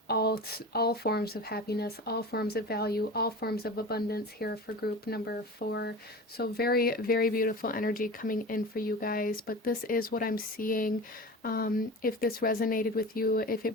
all forms of happiness, all forms of value, all forms of abundance here for group number 4. So very, very beautiful energy coming in for you guys, but this is what I'm seeing. If this resonated with you, if it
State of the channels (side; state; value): both; normal; correlation 0.33